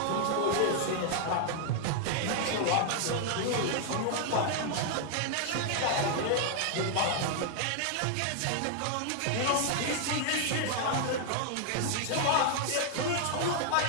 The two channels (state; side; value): different; both; correlation 0.00